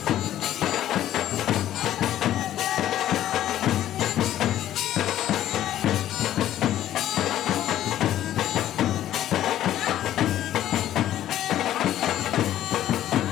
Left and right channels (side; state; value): right; quieter; 12.4 dB